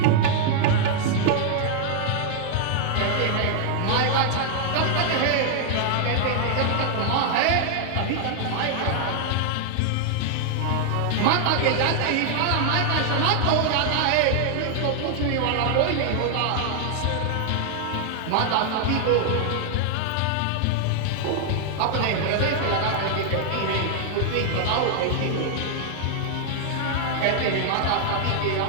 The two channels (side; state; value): both; different; correlation 0.00